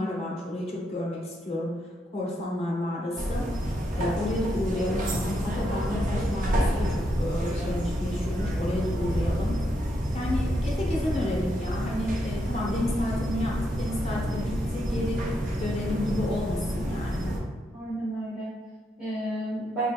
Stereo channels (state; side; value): normal; both; correlation 0.80